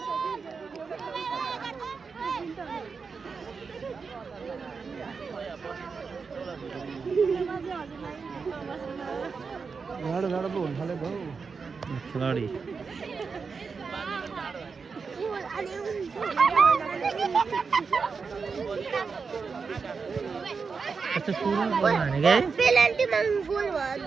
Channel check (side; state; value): left; quieter; 5.2 dB